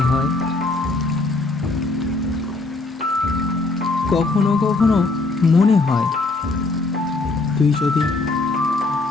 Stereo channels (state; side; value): quieter; right; 3.4 dB